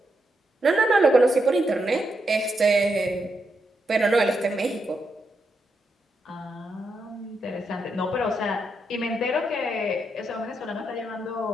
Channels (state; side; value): normal; both; correlation 0.82